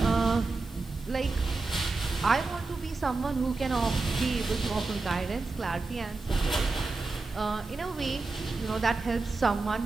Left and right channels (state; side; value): quieter; left; 3.7 dB